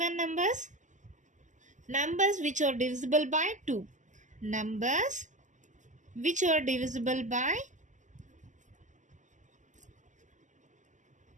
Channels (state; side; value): late; left; 0.36 ms